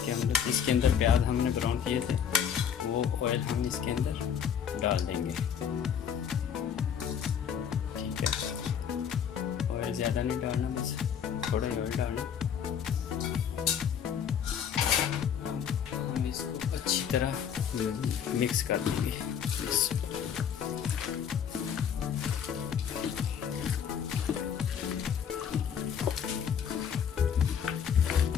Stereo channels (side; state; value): right; quieter; 8.1 dB